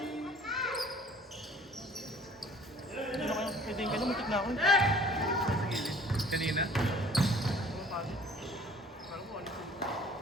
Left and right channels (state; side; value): normal; both; correlation 0.51